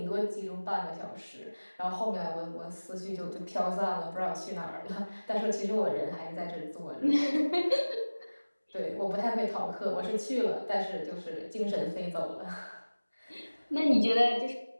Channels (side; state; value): both; inverted; correlation -1.00